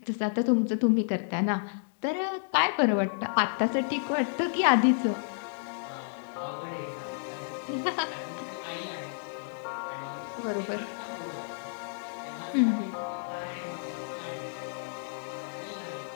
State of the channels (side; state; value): right; silent; digital silence